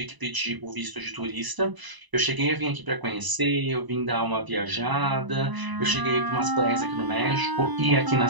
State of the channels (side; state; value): left; late; 1.0 ms